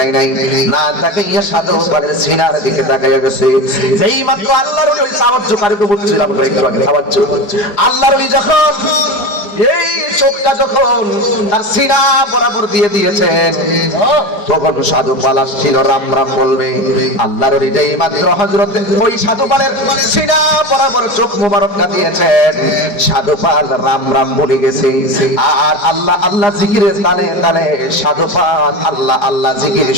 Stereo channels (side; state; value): right; late; 4.8 ms